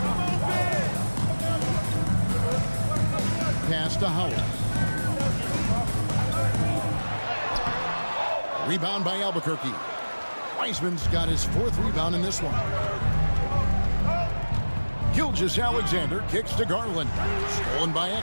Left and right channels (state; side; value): inverted; both; correlation -1.00